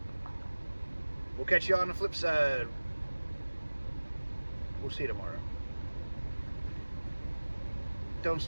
We'll catch you on the flip side. We'll see you tomorrow. Don't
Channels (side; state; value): both; inverted; correlation -1.00